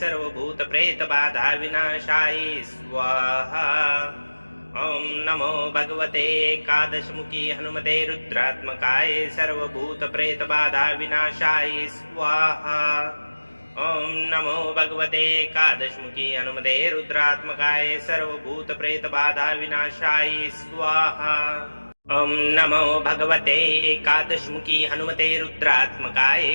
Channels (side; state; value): both; inverted; correlation -1.00